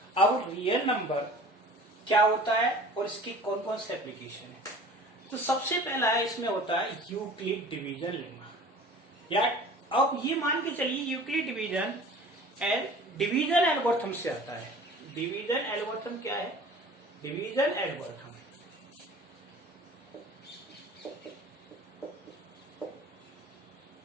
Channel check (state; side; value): normal; both; correlation 0.44